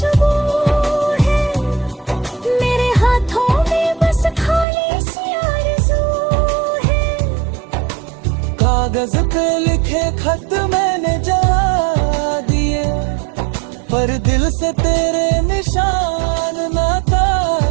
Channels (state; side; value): drops out; left; at 4.7 s